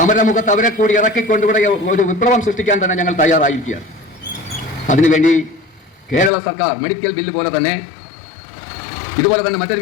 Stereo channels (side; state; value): right; drops out; at 6.3 s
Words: അവരെ കൂടി ഇറക്കിക്കൊണ്ട് ഇവിടെ ഒരു വിപ്ലവം സൃഷ്ടിക്കാൻ തന്നെ ഞങ്ങൾ തയ്യാറായിരിക്കുകയാണ്. അതിനുവേണ്ടി കേരള സർക്കാർ മെഡിക്കൽ ബില്ല് പോലെ തന്നെ ഇതുപോലെ തന്നെ മറ്റൊരു